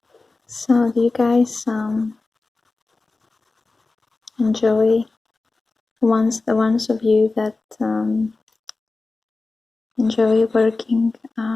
So do you guys enjoy the ones of you that enjoy working,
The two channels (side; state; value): right; quieter; 3.6 dB